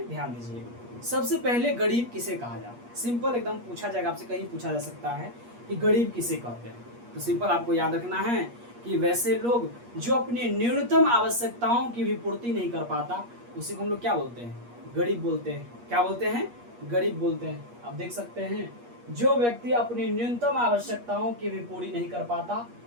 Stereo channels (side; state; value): left; late; 8.4 ms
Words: ध्यान दीजिएगा। सबसे पहले गरीब किसे कहा जाता है, सिंपल एकदम पूछा जाएगा आपसे, कहीं पूछा जा सकता है कि गरीब किसे कहते हैं, तो सिंपल आपको याद रखना है कि वैसे लोग जो अपनी न्यूनतम आवश्यकताओं की भी पूर्ति नहीं कर पाता, उसी को हम लोग क्या बोलते हैं, गरीब बोलते हैं। क्या बोलते हैं, गरीब बोलते हैं। आप देख सकते हैं जो व्यक्ति अपनी न्यूनतम आवश्यकताओं की भी पूरी नहीं कर पाता